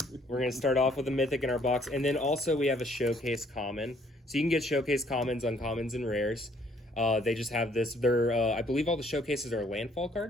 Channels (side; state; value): both; normal; correlation 0.63